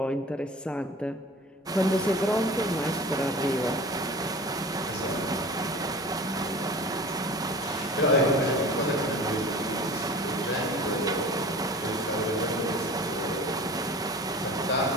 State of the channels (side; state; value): both; normal; correlation 0.40